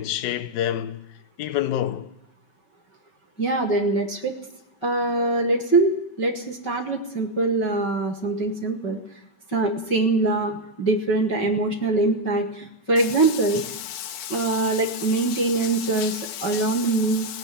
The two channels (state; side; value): late; right; 5.3 ms